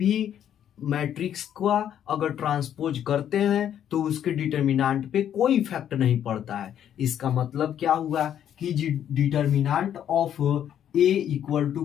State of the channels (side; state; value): right; quieter; 10.0 dB